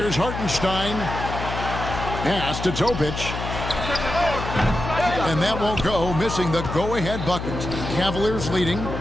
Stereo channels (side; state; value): left; noise; hum, 6 dB below the sound